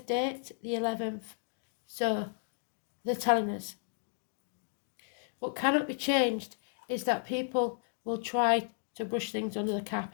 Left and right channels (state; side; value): silent; right; digital silence